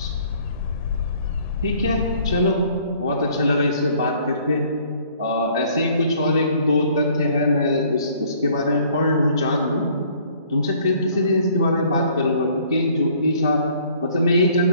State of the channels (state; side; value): inverted; both; correlation -0.59